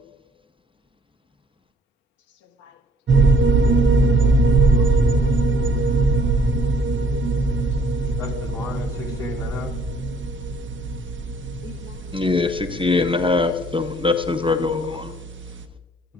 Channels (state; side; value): normal; both; correlation 0.61